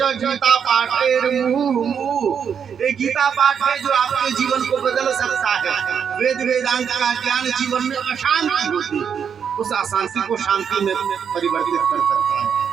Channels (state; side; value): quieter; left; 7.4 dB